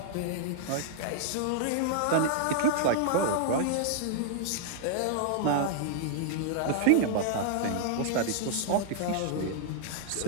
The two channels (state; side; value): different; both; correlation -0.01